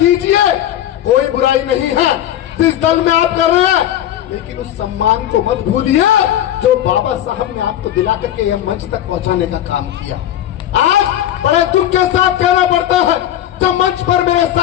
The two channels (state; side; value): quieter; right; 11.8 dB